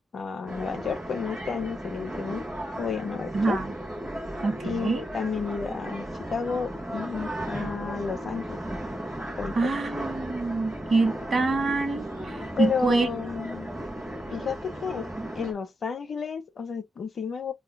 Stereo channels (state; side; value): normal; both; correlation 0.84